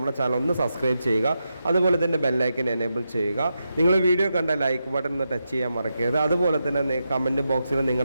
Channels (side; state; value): both; inverted; correlation -0.87